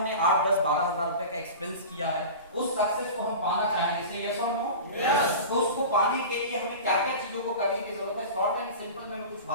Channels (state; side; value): inverted; both; correlation -0.33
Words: 8, 10, 12 हजार रुपए का एक्सपेंस किया है, उस सक्सेस को हम पाना चाहेंगे। से यस और नो? यस। तो उसको पाने के लिए हमें क्या क्या चीजों को करने की जरूरत है? शॉर्ट एंड सिंपल में मैं कुछ